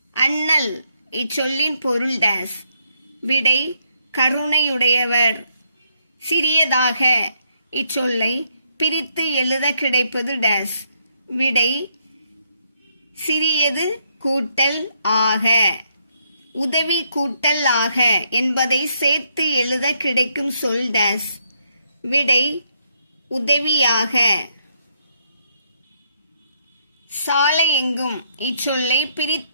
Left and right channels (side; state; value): both; inverted; correlation -0.74